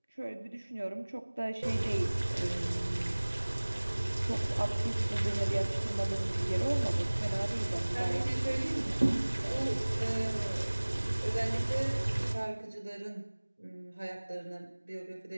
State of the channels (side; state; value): both; inverted; correlation -1.00